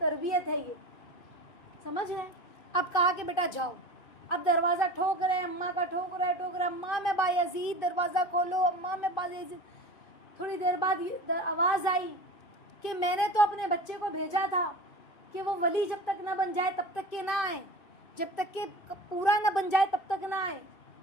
ہے یہ. سمجھ رہے ہیں؟ اب کہا کہ بیٹا جاؤ. اب دروازہ ٹھوک رہے, اماں کا ٹھوک رہے, اماں میں بایزید دروازہ کھولو, اماں میں بایزید. تھوڑی دیر بعد آواز آئی کہ میں نے تو اپنے بچے کو بھیجا تھا کہ وہ ولی جب تک نہ بن جائے تب تک کہ نہ آئے, جب تک کہ پورا نہ بن جائے تب تک نہ آئے.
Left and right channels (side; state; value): right; late; 2.5 ms